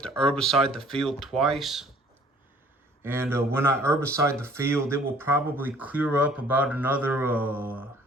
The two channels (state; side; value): normal; both; correlation 0.56